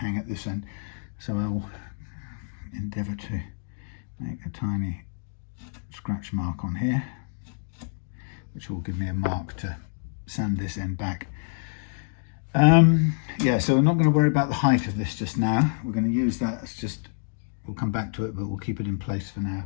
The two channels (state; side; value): silent; right; digital silence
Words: at this end. So I'll endeavour to make a tiny scratch mark on here, which will give me a mark to sand this end back. Yeah, so we're not going to worry about the height of this just now. We're going to use that as just, we'll come back to it, but we'll keep it in place for now.